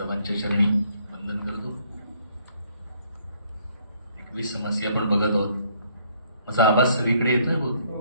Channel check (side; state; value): both; inverted; correlation -0.66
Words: चरणी वंदन करतो. 21 समस्या आपण बघत आहोत. माझा आवाज सगळीकडे येतोय